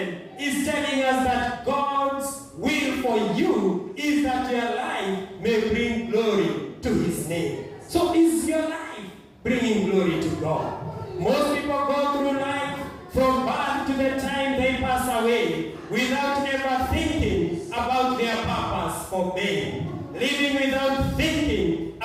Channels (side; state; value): both; identical; correlation 1.00